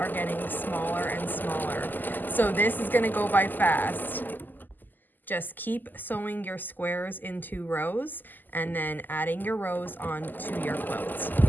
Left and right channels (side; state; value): right; late; 0.087 ms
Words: getting smaller and smaller. So this is gonna go by fast. Just keep sewing your squares into rows and then adding your rows onto your quilt.